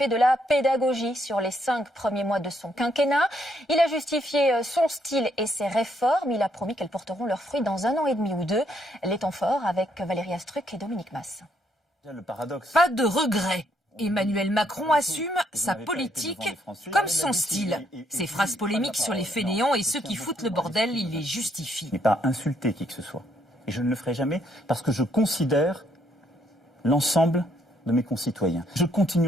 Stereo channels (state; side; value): normal; both; correlation 0.72